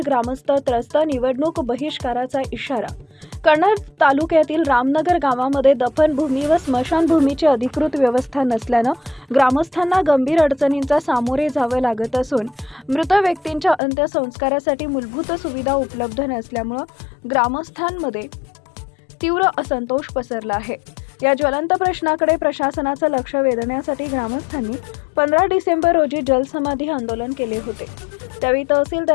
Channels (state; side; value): drops out; right; at 13.8 s